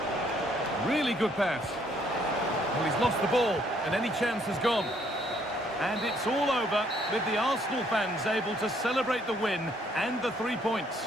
Really good pass. Well, he's lost the ball, and any chance has gone. And it's all over, with the Arsenal fans able to celebrate the win and the 3 points.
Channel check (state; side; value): normal; both; correlation 0.66